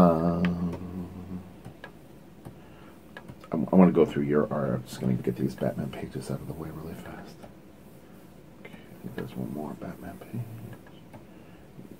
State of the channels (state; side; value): identical; both; correlation 1.00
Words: I want to go through your art. I'm just going to get these Batman pages out of the way really fast. Okay, I think there's one more Batman page.